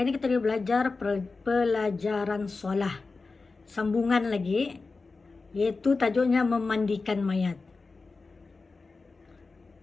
kita belajar pelajaran solah. Sambungan lagi, yaitu tajuknya memandikan mayat.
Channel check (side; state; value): right; quieter; 4.0 dB